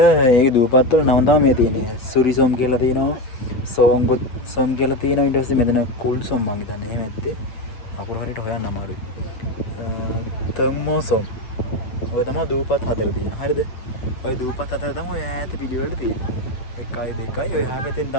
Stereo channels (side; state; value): right; late; 8.1 ms